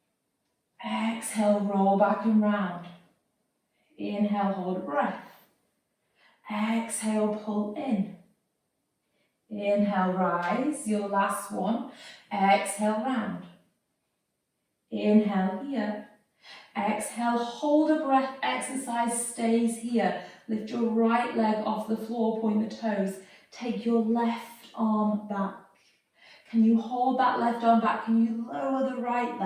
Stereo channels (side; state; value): both; identical; correlation 1.00